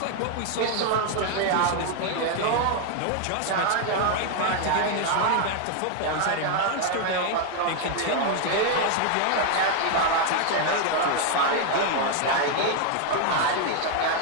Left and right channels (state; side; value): different; both; correlation 0.00